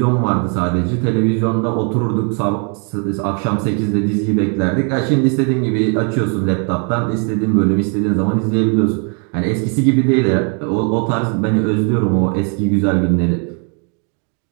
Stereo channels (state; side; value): quieter; left; 37.9 dB